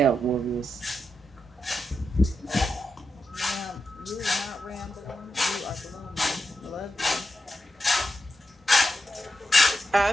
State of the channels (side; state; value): both; normal; correlation 0.87